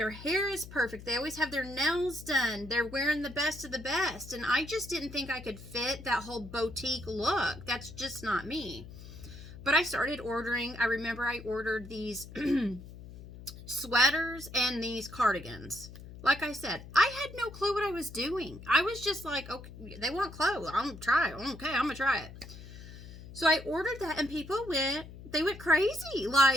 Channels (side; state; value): left; noise; hum, 15 dB below the sound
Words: hair is perfect. They always have their nails done. They're wearing the best of the best. And I just didn't think I could fit that whole boutique look. That's just not me. But I started ordering. I remember I ordered these sweaters and these cardigans. Like I said, I had no clue what I was doing. I was just like, okay, they want clothes. I'm going to try it. Okay, I'm going to try it. So I ordered that, and people went crazy.